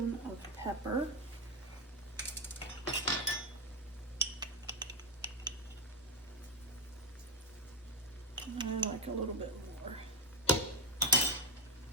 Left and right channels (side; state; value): both; normal; correlation 0.07